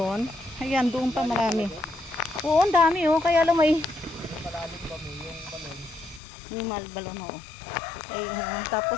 Ayan, doon pa marami. Oo, ang dami oh. Kaya lang may Malalim ba mo yung balon? yung balon oh. Ay,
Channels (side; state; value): right; drops out; at 6.2 s